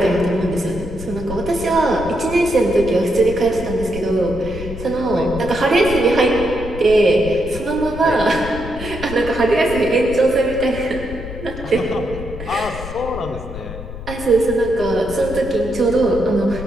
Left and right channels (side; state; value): left; noise; rumble, 10 dB below the sound